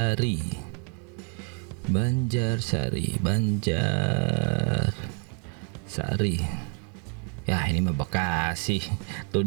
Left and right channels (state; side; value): quieter; left; 37.4 dB